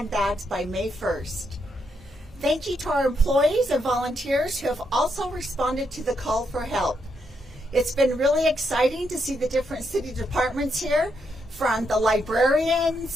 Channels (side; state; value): both; normal; correlation 0.79